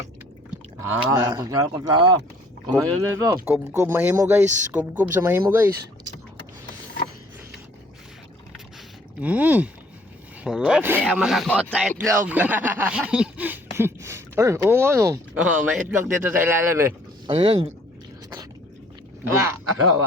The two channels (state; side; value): normal; both; correlation 0.58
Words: Kutsara. Kumain na ito. Kubkub mahimo guys, kubkub sa mahimo guys. Sarap. Kasi ang makakot sa itlog. Ay, oo nga no. Oh, may itlog dito sa ilalim eh. Ano yan? Wala.